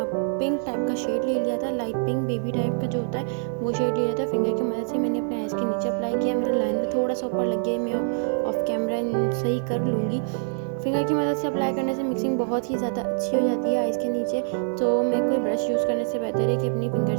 पिंक टाइप का शेड ले लिया था, लाइट पिंक बेबी टाइप का जो होता है वो शेड ले लिया था। फिंगर की मदद से मैंने अपने आइज़ के नीचे अप्लाई किया। मेरा लाइनर थोड़ा सा ऊपर लग गया, मैं ऑफ कैमरा सही कर लूँगी। फिंगर की मदद से अप्लाई करने से मिक्सिंग बहुत ही ज़्यादा अच्छी हो जाती है आइज़ के नीचे, तो मैं कोई ब्रश यूज़ करने से बेहतर है कि अपनी फिंगर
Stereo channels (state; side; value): silent; left; digital silence